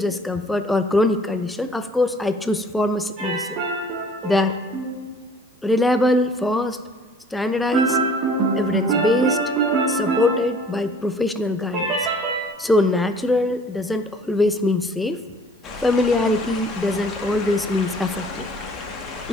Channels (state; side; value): normal; both; correlation 0.52